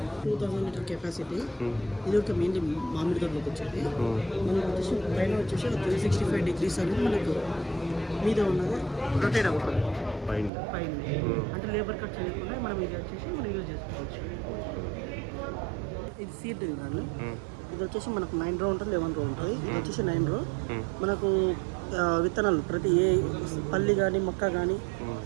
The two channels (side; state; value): left; drops out; at 10.5 s